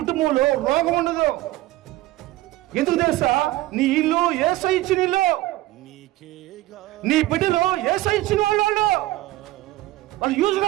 రోగం ఉండదు. ఎందుకు తెలుసా? నీ ఇల్లు యేసు ఇచ్చిన ఇల్లు. నీ బిడ్డలు యేసు ఇచ్చిన వాళ్ళు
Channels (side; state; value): left; quieter; 17.3 dB